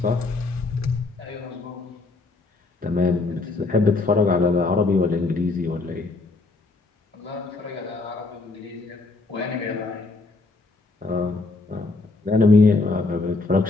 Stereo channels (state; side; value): quieter; right; 3.5 dB